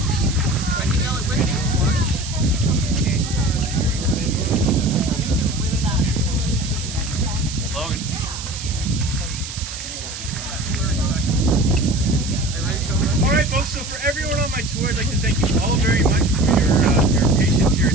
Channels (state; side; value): noise; right; hiss, 9 dB below the sound